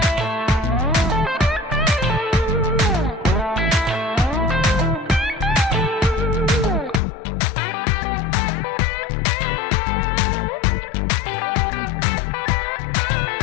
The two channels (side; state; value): right; drops out; at 7.0 s